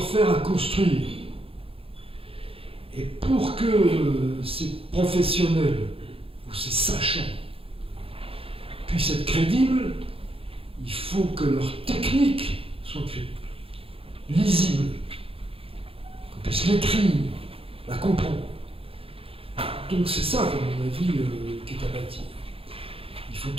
à construire. Et pour que ces professionnels ou ces sachants puissent être crédibles, il faut que leur technique soit lisible, qu'on puisse l'écrire, la comprendre. Donc c'est ça, à mon avis, qui est à bâtir. Il faut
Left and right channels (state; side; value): late; left; 0.27 ms